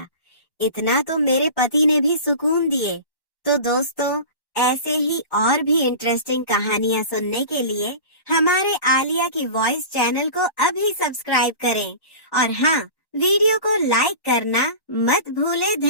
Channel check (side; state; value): right; late; 1.1 ms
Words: इतना तो मेरे पति ने भी सुकून दिए। तो दोस्तों, ऐसे ही और भी इंटरेस्टिंग कहानियां सुनने के लिए हमारे आलिया की वॉइस चैनल को अभी सब्सक्राइब करें और हाँ, वीडियो को लाइक करना मत भूलें।